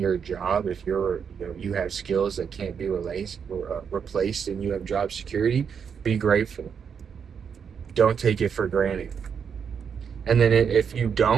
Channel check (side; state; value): left; quieter; 6.9 dB